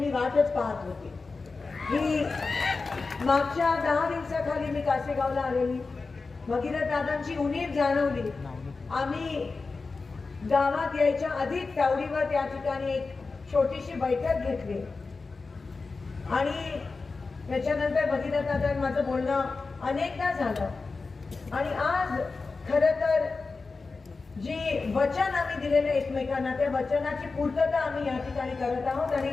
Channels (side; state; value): right; quieter; 4.1 dB